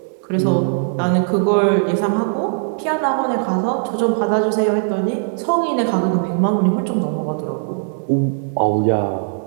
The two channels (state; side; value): silent; left; digital silence